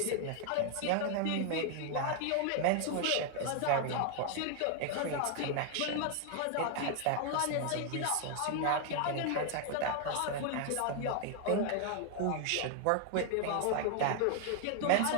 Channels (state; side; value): different; both; correlation 0.00